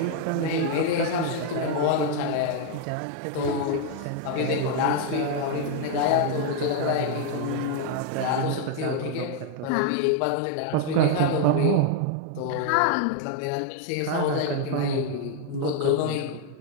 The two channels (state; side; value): different; both; correlation 0.00